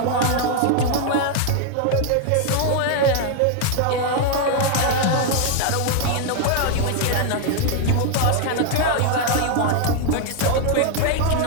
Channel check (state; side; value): different; both; correlation 0.00